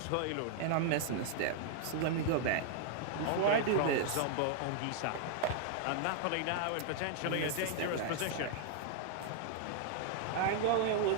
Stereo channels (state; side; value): different; both; correlation 0.00